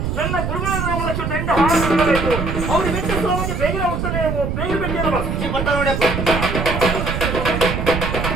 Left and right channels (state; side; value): noise; right; rumble, 2 dB below the sound